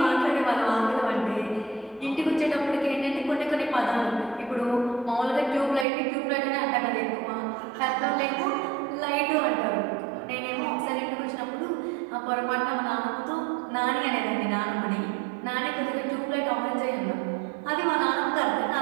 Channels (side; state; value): left; drops out; at 5.9 s